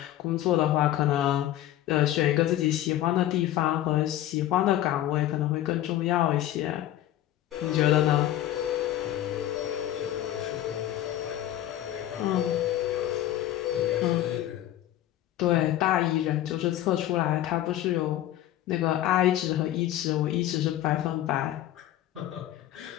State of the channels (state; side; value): quieter; right; 13.2 dB